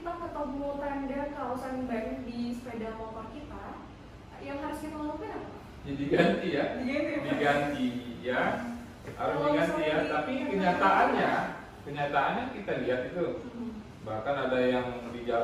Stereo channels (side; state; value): both; identical; correlation 1.00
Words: ketemu tanda kausan ban di sepeda motor kita, yang harus kita lakukan apa? Ya, diganti ya. Diganti ya Pak? Diganti ya. Harus Kalau diganti ya. misalnya Tapi kenyataannya kita lihat itu. Bahkan ada yang di